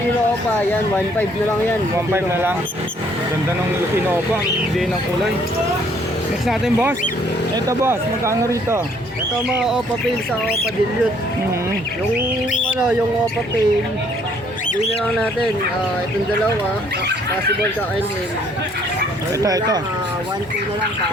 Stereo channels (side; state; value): both; normal; correlation 0.63